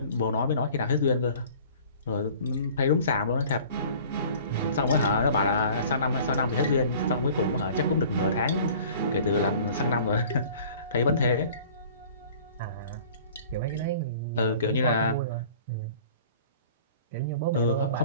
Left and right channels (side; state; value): both; inverted; correlation -0.47